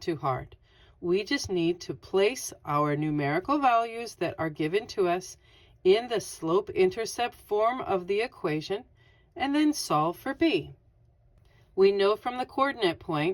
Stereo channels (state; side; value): identical; both; correlation 1.00